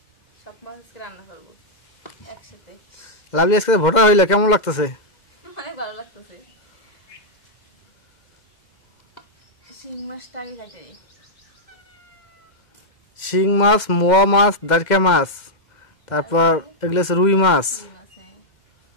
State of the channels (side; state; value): right; late; 2.1 ms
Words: সব মাছ আজকে রান্না করবো একসাথে। লাভলি আজকে ভোটার হইলে কেমন লাগতেছে? অনেক ভালো লাগতেছে। শিং মাছটা আমি খাইতে, শিং মাছ, মোয়া মাছ, দারকা মাছ, তারপর এগুলো রুই মাছ।